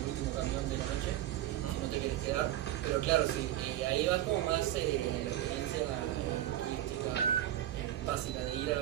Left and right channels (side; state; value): left; quieter; 13.0 dB